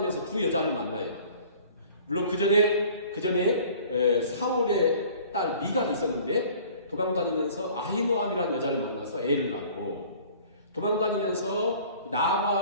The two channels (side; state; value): both; inverted; correlation -0.49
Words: 두 여자를 만나요. 물론 그 전에 사울의 딸 미갈이 있었는데 도망다니면서 아히노암이라는 여자를 만나서 애를 낳고 도망다니면서